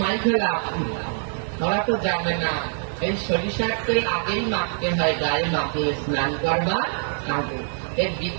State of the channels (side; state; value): left; silent; digital silence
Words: মাইকে লাভ। ওরা তো জানে না এই সরিষার তেল আগেই মাখতে হয়, গায়ে মাখলে স্নান করবার আগে। এর